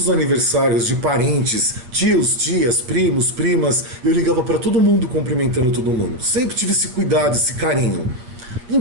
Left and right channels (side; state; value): left; late; 8.2 ms